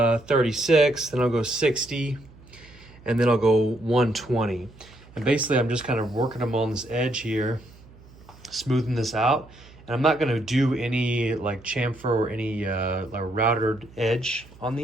then I'll go 60, and then I'll go 120. And basically I'm just kind of working them on this edge here, smoothing this out. And I'm not gonna do any like chamfer or any routed edge on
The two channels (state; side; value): noise; right; hum, 23 dB below the sound